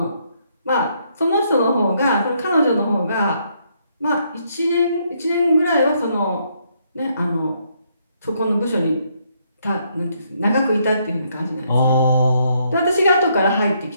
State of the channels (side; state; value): both; inverted; correlation -0.73